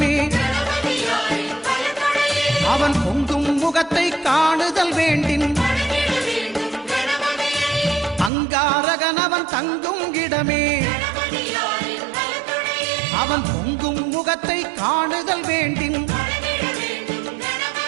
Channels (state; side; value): drops out; left; at 8.3 s